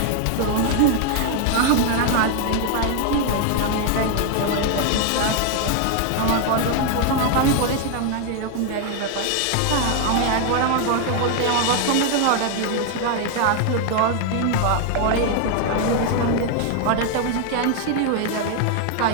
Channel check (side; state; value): both; different; correlation 0.00